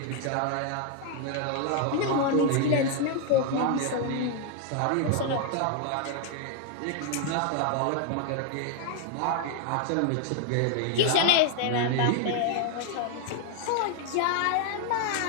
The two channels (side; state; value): both; different; correlation 0.00